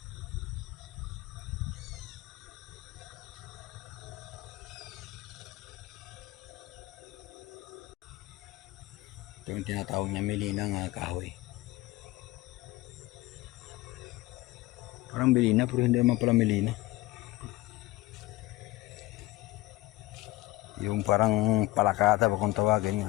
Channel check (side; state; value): right; quieter; 19.0 dB